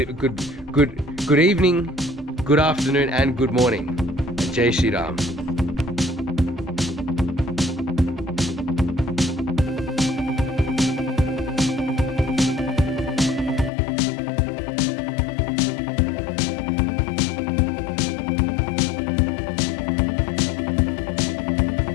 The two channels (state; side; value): drops out; right; at 13.7 s